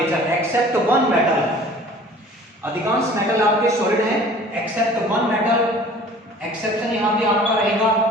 except one metal. अधिकांश मेटल आपके सॉलिड हैं एक्सेप्ट वन मेटल। एक्सेप्शन यहां भी आपका रहेगा,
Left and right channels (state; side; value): normal; both; correlation 0.48